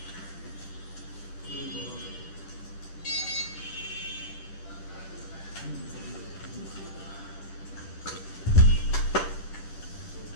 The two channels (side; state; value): right; late; 10 ms